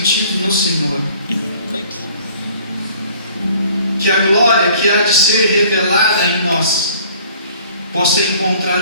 no Senhor. Que a glória que há de ser revelada em nós possa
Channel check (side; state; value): both; inverted; correlation -0.53